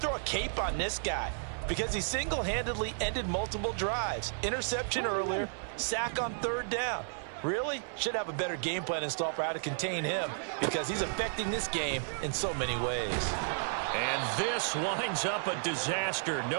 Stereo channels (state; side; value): silent; left; 56 dB below the other